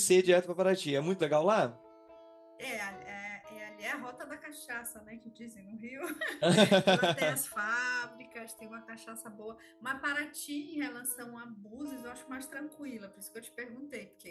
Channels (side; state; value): both; identical; correlation 1.00